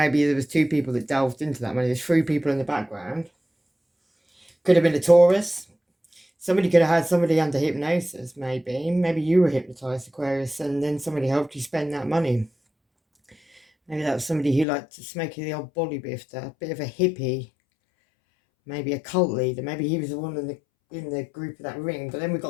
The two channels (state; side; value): drops out; right; at 14.7 s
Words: there was 2 people that delved into that money. There's 3 people in the background. Could have been a Taurus. Somebody could have had somebody under hypnosis, maybe. Maybe you were hypnotized, Aquarius, and then somebody helped you spend that money. Maybe that was somebody who liked to smoke the old body bifter, a bit of a hippie. Maybe a cult leader. Maybe he was the one in the group of that ring. But then we've